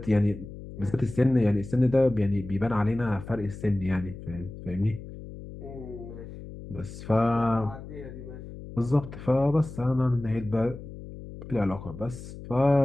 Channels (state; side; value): noise; left; hum, 13 dB below the sound